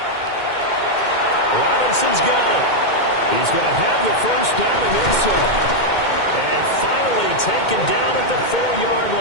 Robinson's got it. He's going to have the first down and then some. And finally taken down at the 4-yard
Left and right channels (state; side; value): late; right; 2.1 ms